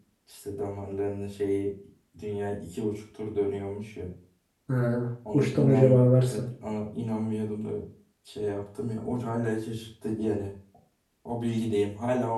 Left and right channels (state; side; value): identical; both; correlation 1.00